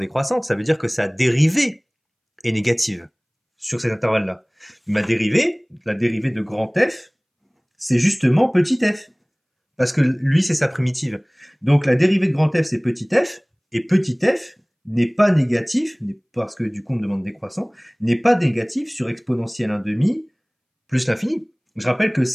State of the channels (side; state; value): both; identical; correlation 1.00